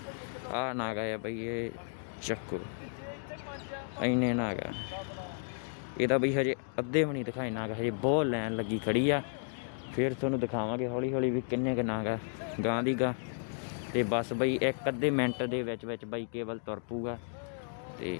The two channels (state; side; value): silent; right; digital silence